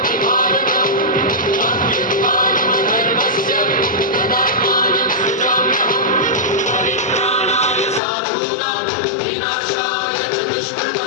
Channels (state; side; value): drops out; right; at 8.0 s